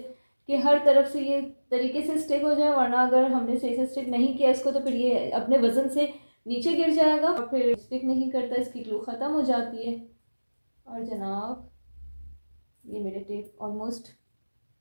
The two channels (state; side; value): inverted; both; correlation -1.00